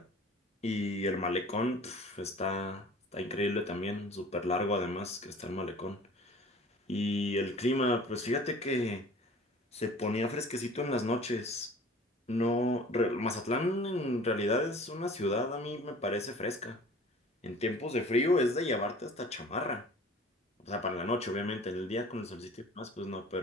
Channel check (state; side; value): normal; both; correlation 0.46